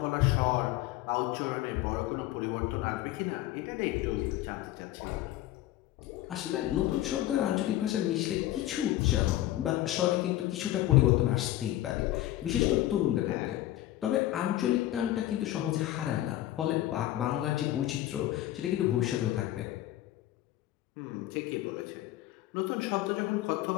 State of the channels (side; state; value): right; quieter; 14.7 dB